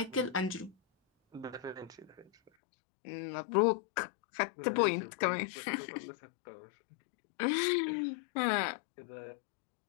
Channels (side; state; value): right; drops out; at 2.5 s